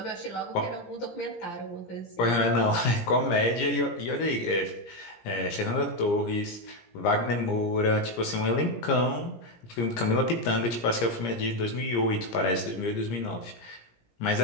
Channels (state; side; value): late; right; 17 ms